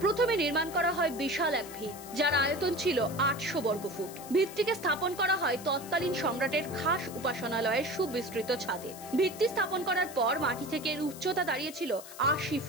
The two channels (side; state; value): left; noise; hiss, 15 dB below the sound